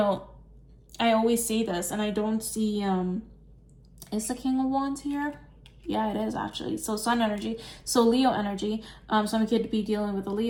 I always say this, and I don't see is the King of Wands here? Yeah, it is actually. So Sun energy, so Leo energy. Some could be dealing with a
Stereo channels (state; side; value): identical; both; correlation 1.00